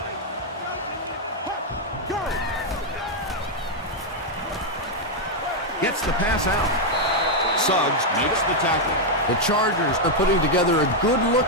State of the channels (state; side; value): normal; both; correlation 0.00